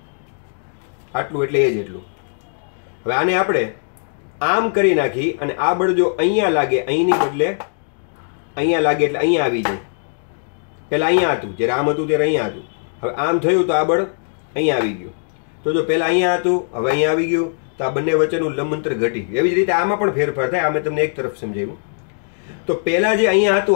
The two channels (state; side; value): silent; right; digital silence